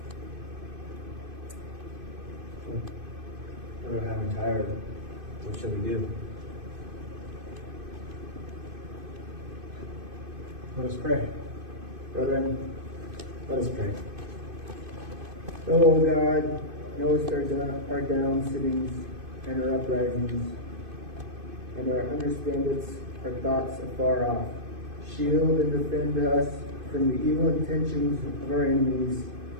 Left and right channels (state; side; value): late; left; 2.5 ms